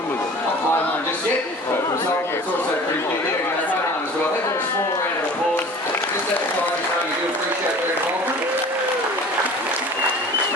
Mohan just yet, but from Sultan it's also pretty big here. We're going to Mohan as well. Let's have a small round of applause. Just let the tigers know you do appreciate their involvement.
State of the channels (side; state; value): both; normal; correlation 0.43